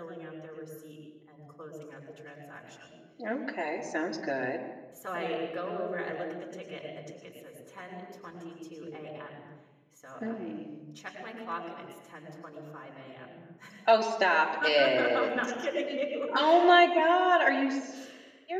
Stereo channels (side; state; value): both; identical; correlation 1.00